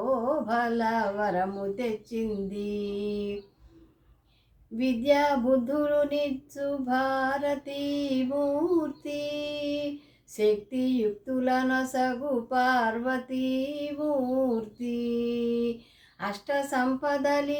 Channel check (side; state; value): both; identical; correlation 1.00